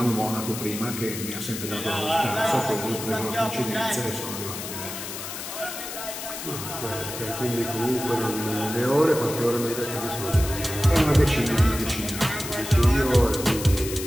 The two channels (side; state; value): left; noise; hiss, 8 dB below the sound